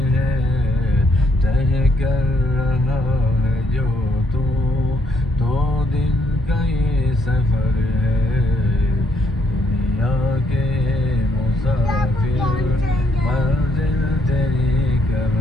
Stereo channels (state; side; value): normal; both; correlation 0.71